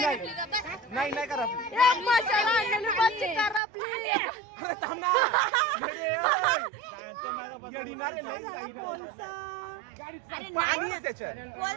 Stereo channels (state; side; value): drops out; left; at 3.6 s